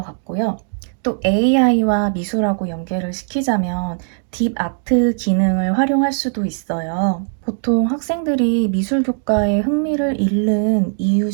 같고요. 또 AI와 미술하고 연계를 시키자면 딥 아트 기능을 활용할 수도 있어요. 보통 학생들이 미술 교과에 흥미를 잃는 이유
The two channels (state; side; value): silent; left; digital silence